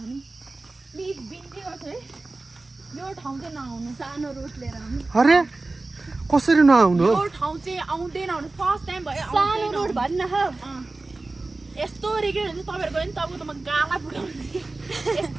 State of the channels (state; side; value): quieter; left; 3.3 dB